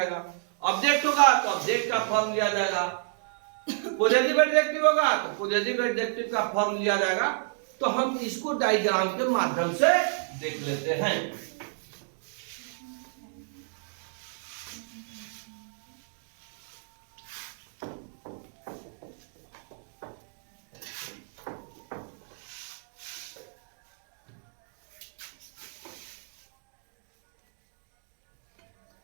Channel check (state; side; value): silent; left; digital silence